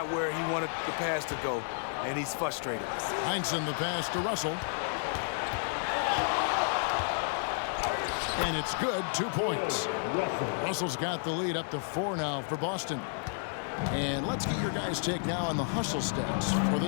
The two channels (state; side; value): silent; right; digital silence